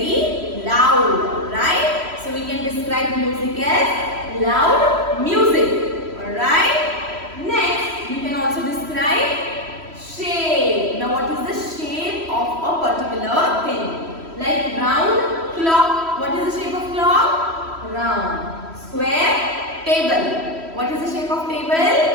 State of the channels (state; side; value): late; left; 3.1 ms